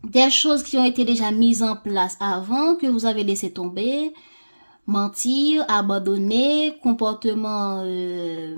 des choses qui ont été déjà mises en place avant, que vous avez laissé tomber, mentir, abandonner, comportement,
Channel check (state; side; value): inverted; both; correlation -1.00